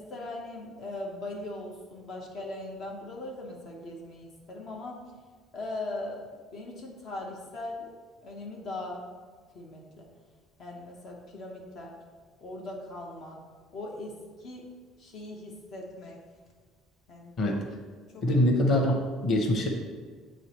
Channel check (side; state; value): both; normal; correlation 0.54